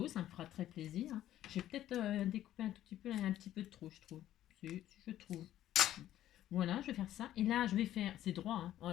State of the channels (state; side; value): quieter; right; 12.7 dB